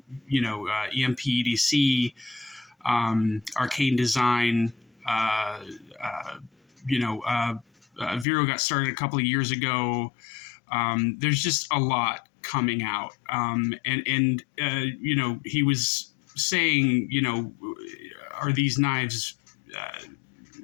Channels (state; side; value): drops out; right; at 8.2 s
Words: EDC, ARKANE Design. VERO got started a couple of years ago. There's just a lot coming out. He was saying, are these knives